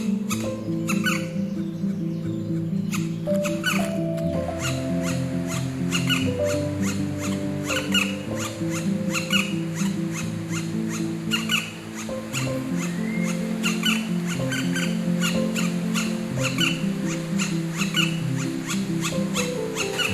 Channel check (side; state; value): both; identical; correlation 1.00